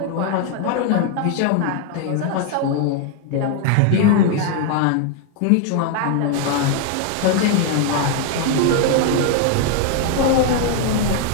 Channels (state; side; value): different; both; correlation 0.00